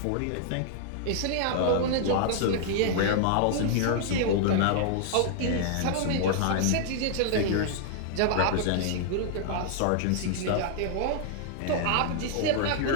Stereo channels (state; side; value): different; both; correlation -0.01